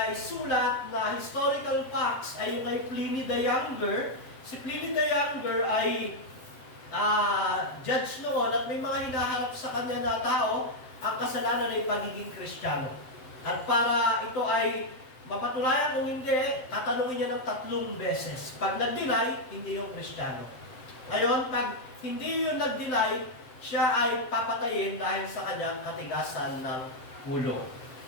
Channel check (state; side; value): late; right; 7.8 ms